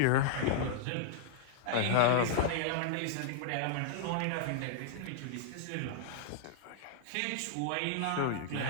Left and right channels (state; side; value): different; both; correlation -0.01